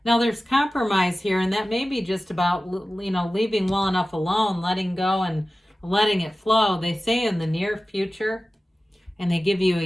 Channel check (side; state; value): both; normal; correlation 0.96